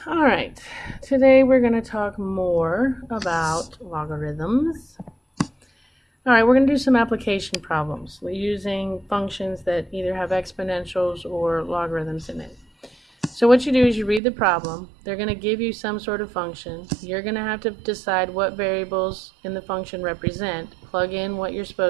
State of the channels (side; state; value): left; drops out; at 14.2 s